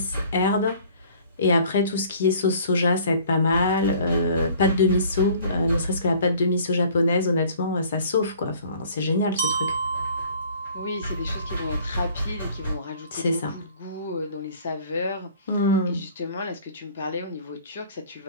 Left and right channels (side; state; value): both; inverted; correlation -0.52